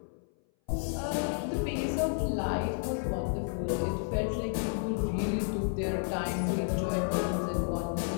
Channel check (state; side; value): silent; right; 57 dB below the other